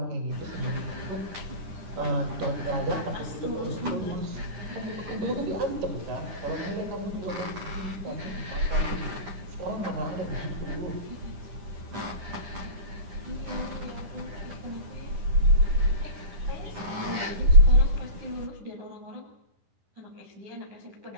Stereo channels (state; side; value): late; left; 10 ms